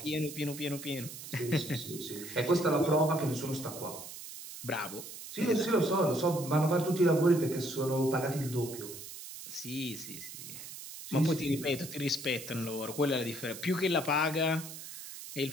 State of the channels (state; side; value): noise; right; hiss, 12 dB below the sound